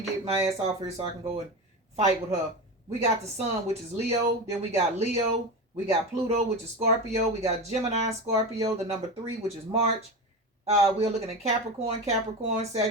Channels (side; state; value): both; normal; correlation 0.23